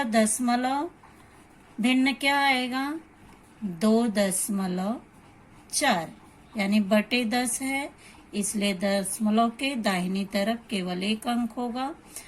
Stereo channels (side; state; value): both; identical; correlation 1.00